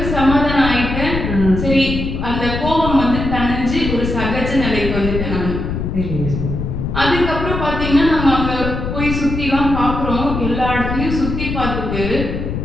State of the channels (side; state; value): left; noise; rumble, 4 dB below the sound